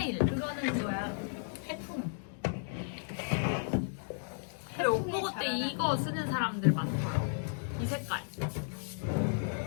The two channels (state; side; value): silent; right; digital silence